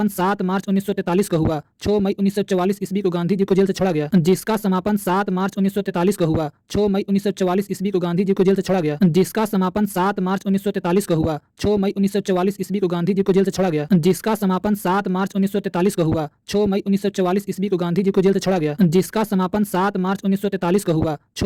7 मार्च 1943 को हुआ। 6 मई 1944 ईस्वी को गांधी जी को जेल से छोड़ा गया, जिसका समापन 7 मार्च 1943 को हुआ। 6 मई 1944 ईस्वी को गांधी जी को जेल से छोड़ा गया, जिसका समापन 7 मार्च 1943 को हुआ। 6 मई 1944 ईस्वी को गांधी जी को जेल से छोड़ा गया, जिसका समापन 7 मार्च 1943 को हुआ। 6 मई 1944 ईस्वी को गांधी जी को जेल से छोड़ा गया, जिसका समापन 7 मार्च 1943 को हुआ।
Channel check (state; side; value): identical; both; correlation 1.00